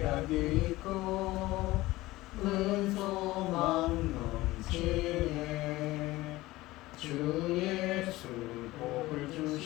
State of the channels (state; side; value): quieter; right; 18.5 dB